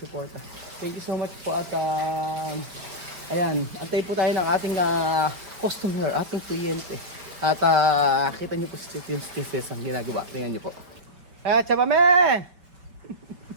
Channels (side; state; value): left; late; 5.0 ms